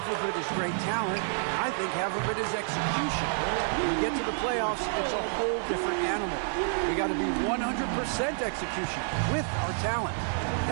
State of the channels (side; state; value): left; silent; 55 dB below the other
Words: of it is great talent, and I think half of it is execution. When you get to the playoffs, it's a whole different animal. We got to be 100% execution with our talent.